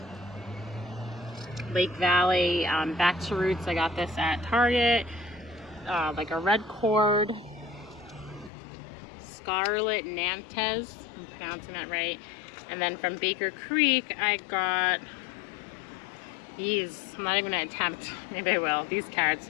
Lake Valley, back to roots. I got this at Target. Like a red cord. Scarlet Nantes, I'm pronouncing that right. And then from Baker Creek, I got these. I'm not even gonna attempt. Maybe I will. These carrots,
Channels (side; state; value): right; drops out; at 8.5 s